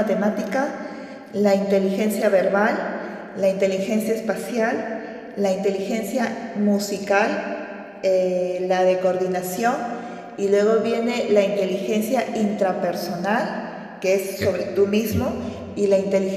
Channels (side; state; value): both; identical; correlation 1.00